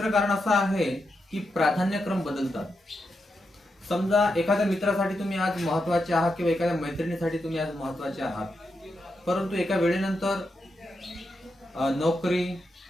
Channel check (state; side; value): normal; both; correlation 0.86